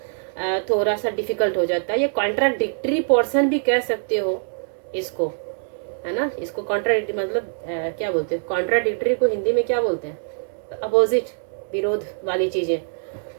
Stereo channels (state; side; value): silent; left; 63 dB below the other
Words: थोड़ा सा डिफिकल्ट हो जाता है। ये कॉन्ट्राडिक्टरी पोर्शन भी कह सकते हो इसको, है ना, इसको कॉन्ट्राडिक्टरी मतलब क्या बोलते हैं, कॉन्ट्राडिक्टरी को हिंदी में क्या बोलते हैं, अपोजिट, विरोध वाली चीजें।